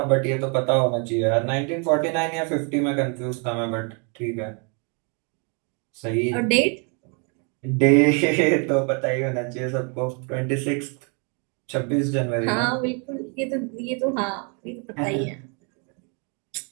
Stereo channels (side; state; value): left; quieter; 36.5 dB